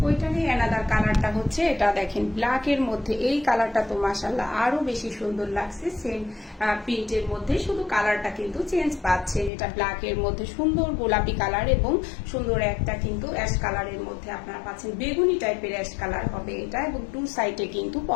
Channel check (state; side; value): drops out; right; at 9.5 s